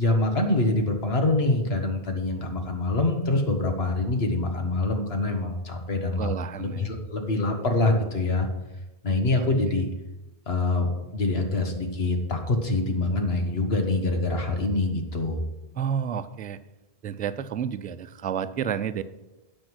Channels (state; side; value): late; right; 1.7 ms